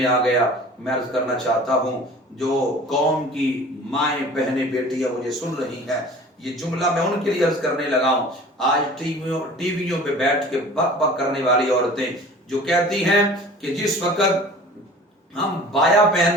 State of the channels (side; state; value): both; normal; correlation 0.44